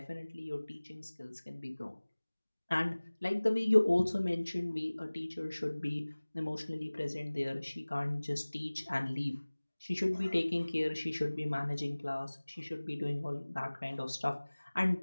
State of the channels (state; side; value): inverted; both; correlation -1.00